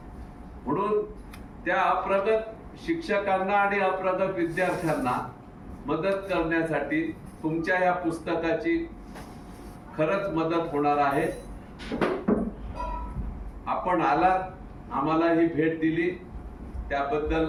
म्हणून त्या अप्रगत शिक्षकांना आणि अप्रगत विद्यार्थ्यांना मदत करण्यासाठी तुमच्या या पुस्तकाची खरंच मदत होणार आहे. आपण आलात, आम्हाला ही भेट दिली, त्याबद्दल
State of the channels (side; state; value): both; identical; correlation 1.00